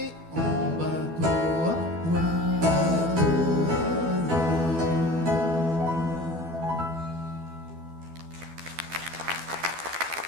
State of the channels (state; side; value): late; left; 12 ms